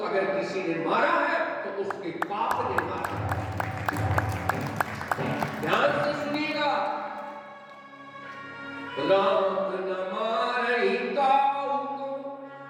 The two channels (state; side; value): identical; both; correlation 1.00